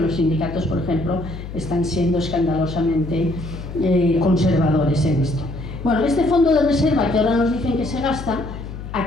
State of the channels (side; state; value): left; noise; hum, 10 dB below the sound